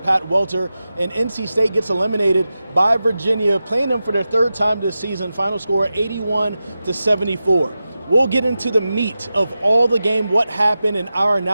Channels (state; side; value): inverted; both; correlation -0.93